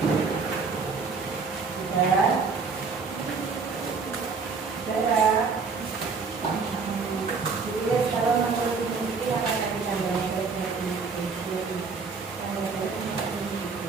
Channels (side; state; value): left; quieter; 4.9 dB